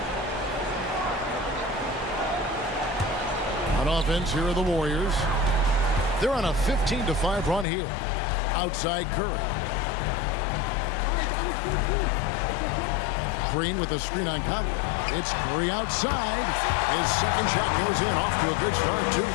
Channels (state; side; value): drops out; right; at 7.7 s